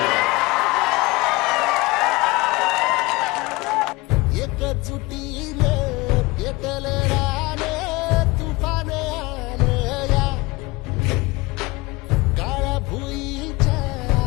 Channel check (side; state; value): right; quieter; 22.8 dB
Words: एकजुटीने पेटले राने तुफान आले या काळ्या भुईच्या